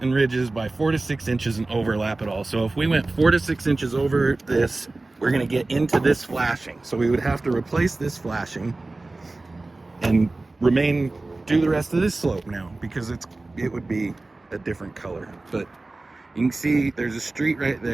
ridges by 4 to 6 inches and overlap it all. So if we went 4 to 6 inches over this, we're going to get into this flashing. So we would have to replace this flashing and do the rest of this slope now because it would be a different color. But you can see there's a street right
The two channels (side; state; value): left; quieter; 3.1 dB